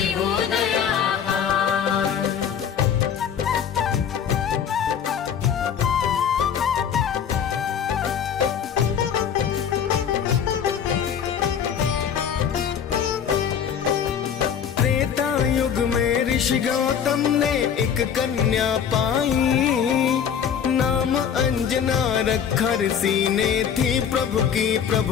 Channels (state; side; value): quieter; right; 8.0 dB